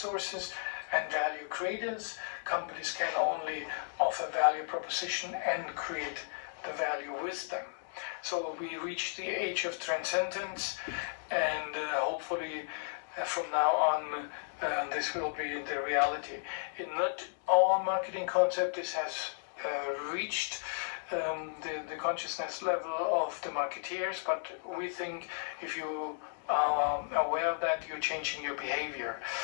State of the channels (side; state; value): right; silent; digital silence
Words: and value creators. Companies can only offer value proposition and create the value with them. So we reached the age of transcendence, and hopefully from now on this will be the reality. In not all marketing concept this has reached the consciousness level of the marketeers, but we think if you are aware of that, you're changing your behavior